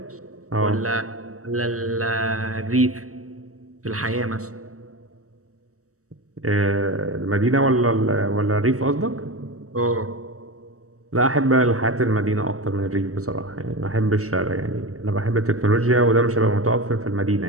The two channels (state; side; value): late; left; 0.65 ms